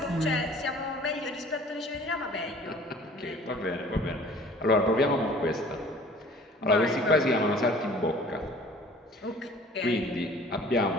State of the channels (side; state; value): both; normal; correlation 0.49